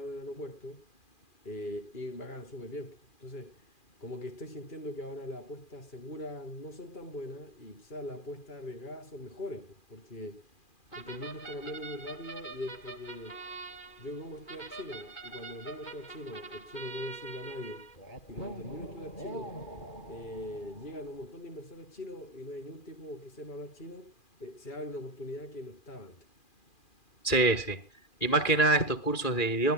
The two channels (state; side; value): late; right; 2.4 ms